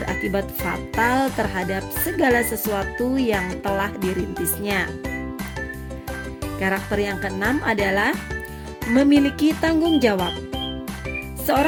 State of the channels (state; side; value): identical; both; correlation 1.00